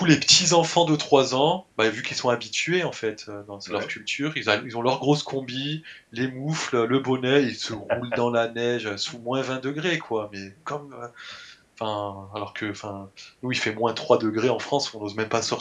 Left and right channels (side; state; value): both; identical; correlation 1.00